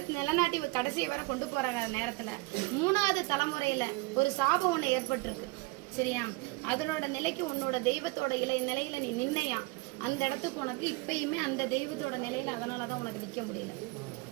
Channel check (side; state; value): left; quieter; 25.3 dB